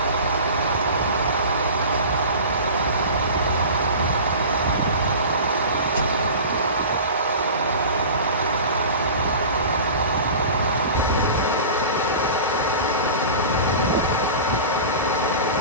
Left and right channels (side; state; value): both; inverted; correlation -0.35